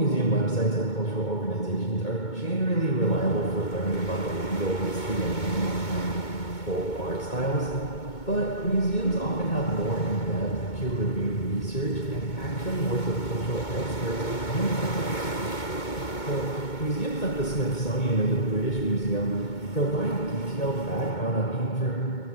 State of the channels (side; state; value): right; late; 2.2 ms